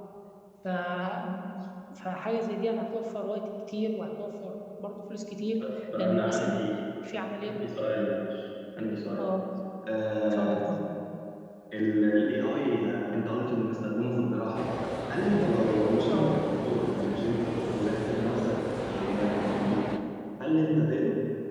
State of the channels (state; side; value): identical; both; correlation 1.00